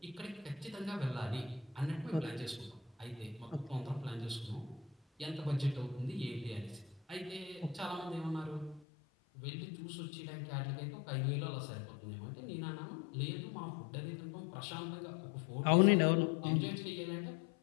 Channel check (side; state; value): right; drops out; at 8.8 s